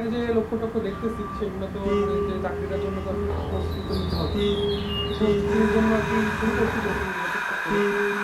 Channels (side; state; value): both; identical; correlation 1.00